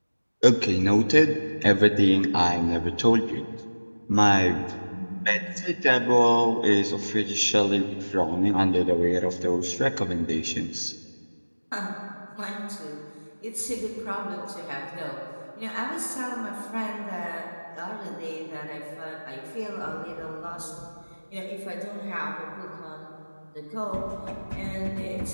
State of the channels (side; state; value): both; inverted; correlation -1.00